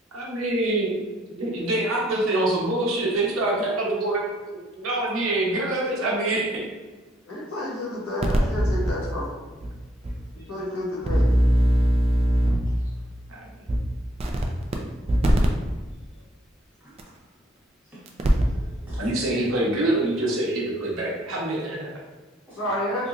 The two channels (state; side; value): normal; both; correlation 0.68